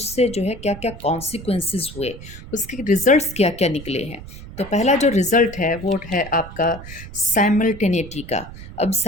जो है क्या क्या कॉन्सिक्वेंसेस हुए, उसके रिजल्ट्स क्या क्या निकले हैं। तो पहला जो रिज़ल्ट है वो है आपका साइमल्टेनिटी का। अब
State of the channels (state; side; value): noise; right; rumble, 14 dB below the sound